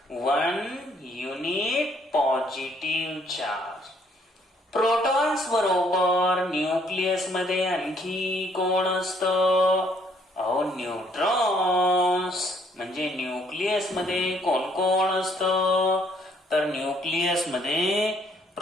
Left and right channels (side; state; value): both; normal; correlation 0.66